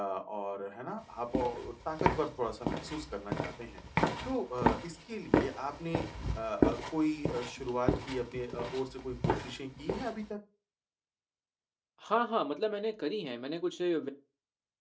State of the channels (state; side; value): identical; both; correlation 1.00